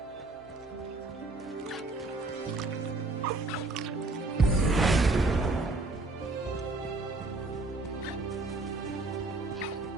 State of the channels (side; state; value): left; quieter; 3.1 dB